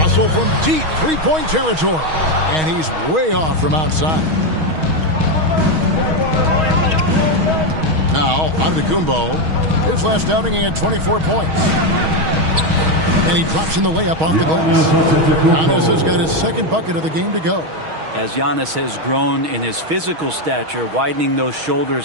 from deep three-point territory. And he's way off from outside. Now, Antetokounmpo, his last outing he had 24 points. And he drops in the layup off the glass. Giannis has got his second bucket of the game to go. As Giannis has grown in his physical stature, widening those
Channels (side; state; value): left; late; 6.3 ms